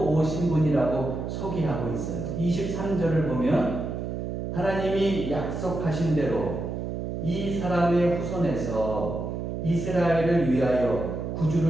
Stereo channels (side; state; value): right; noise; hum, 4 dB below the sound